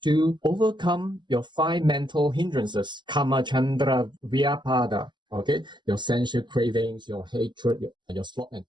to overcome your 5 mental hindrances. Kama, Chandra, Vyapada. Okay, your sensual cravings, your hatred, your sloth and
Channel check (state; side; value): late; left; 0.22 ms